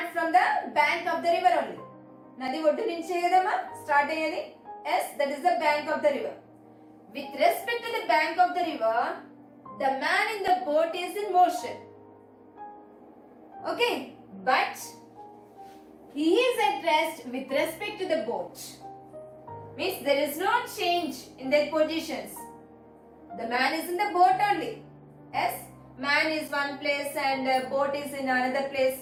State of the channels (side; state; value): both; identical; correlation 1.00